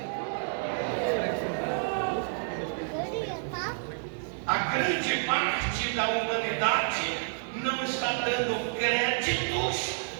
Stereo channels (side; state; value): left; silent; 58 dB below the other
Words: A grande parte da humanidade não está dando créditos